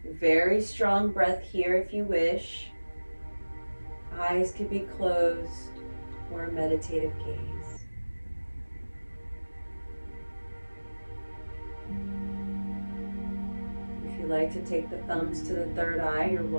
Very strong breath here if you wish. Eyes could be closed or a meditative gaze. If you like to take the thumbs to the third eye, you're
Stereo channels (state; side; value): inverted; both; correlation -1.00